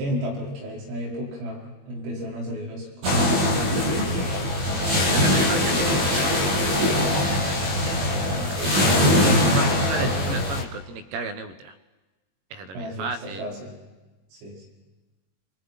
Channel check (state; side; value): late; left; 21 ms